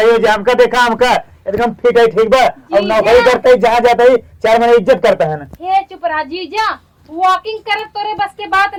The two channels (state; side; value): identical; both; correlation 1.00